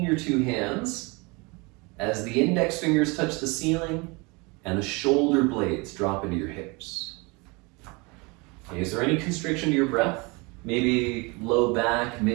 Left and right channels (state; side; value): quieter; left; 27.5 dB